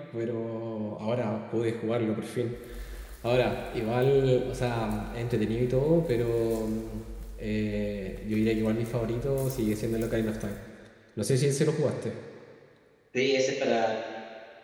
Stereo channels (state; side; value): identical; both; correlation 1.00